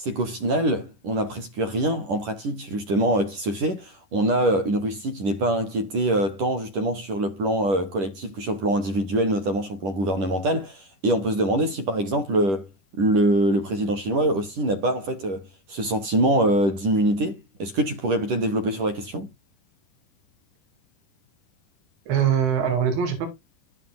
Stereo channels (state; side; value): late; left; 10 ms